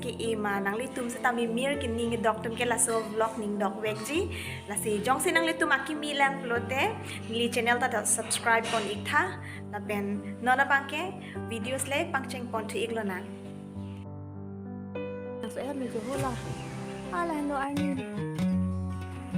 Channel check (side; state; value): both; identical; correlation 1.00